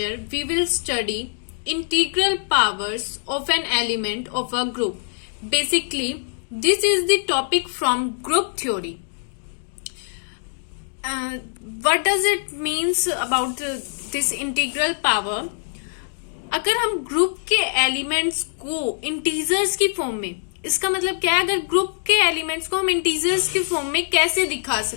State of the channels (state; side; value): silent; right; digital silence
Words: we will study integral powers of an element of a group. Basically, this is the topic from group theory. What does it means about this integral power? अगर हम group के elements को integers की form में, इसका मतलब क्या है, अगर ग्रुप के एलिमेंट्स को हम इंटीजर्स की फॉर्म में कैसे दिखा